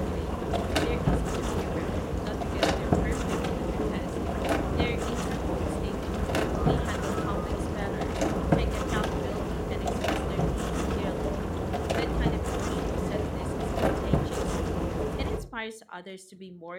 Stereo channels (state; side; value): identical; both; correlation 1.00